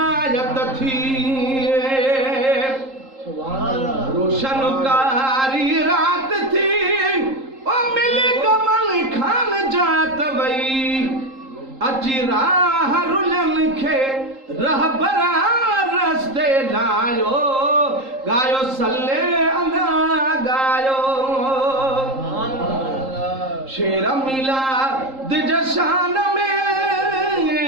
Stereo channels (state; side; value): late; left; 3.8 ms